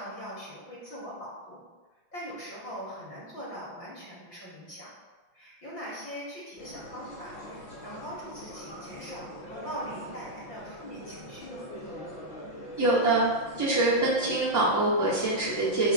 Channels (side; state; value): right; late; 5.8 ms